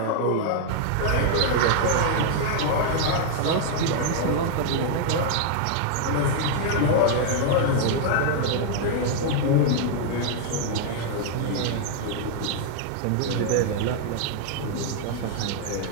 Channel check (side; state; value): both; different; correlation 0.00